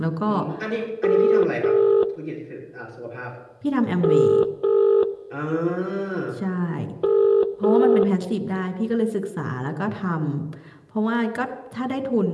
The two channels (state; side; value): identical; both; correlation 1.00